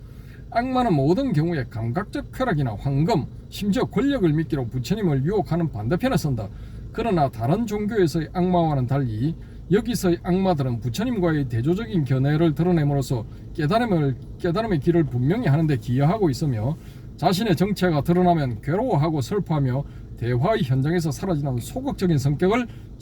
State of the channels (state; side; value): identical; both; correlation 1.00